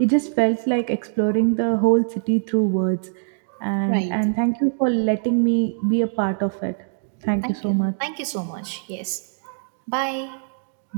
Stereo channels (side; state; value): left; silent; digital silence